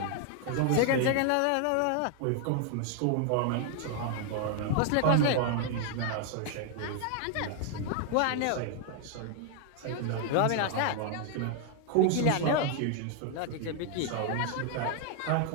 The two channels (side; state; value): both; different; correlation 0.00